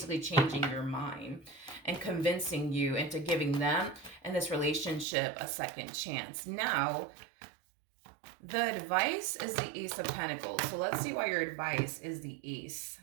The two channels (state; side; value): drops out; left; at 5.1 s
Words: changing your mind and convincing you into giving them and this relationship a second chance. Now, the advice is the Ace of Pentacles. So let's see why your advice is the Ace